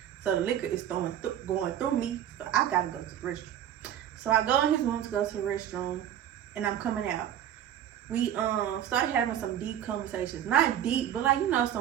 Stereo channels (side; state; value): left; quieter; 10.7 dB